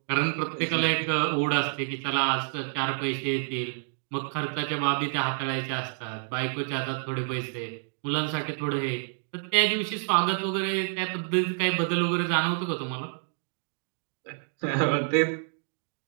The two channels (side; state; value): left; silent; 59 dB below the other